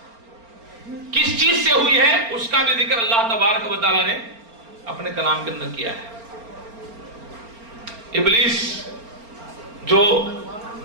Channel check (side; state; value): left; late; 4.3 ms